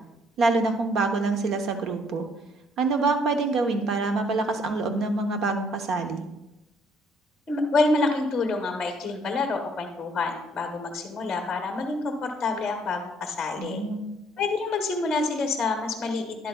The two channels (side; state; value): both; normal; correlation 0.65